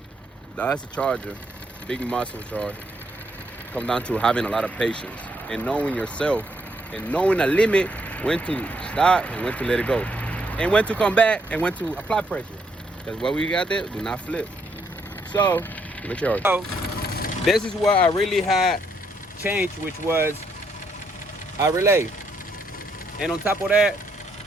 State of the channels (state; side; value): normal; both; correlation 0.74